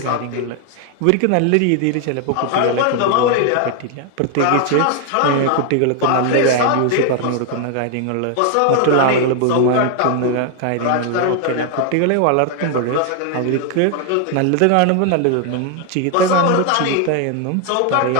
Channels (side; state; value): both; different; correlation 0.00